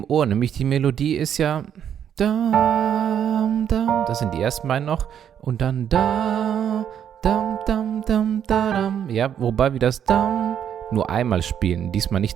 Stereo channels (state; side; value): quieter; left; 9.1 dB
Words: Ohr. Nämlich die Melodie ist ja dam, dam. Das sind die ersten beiden noch. Und dann da, dam, dam, dam, da, dam. Ja, wobei wir das dam nur einmal spielen. Diesmal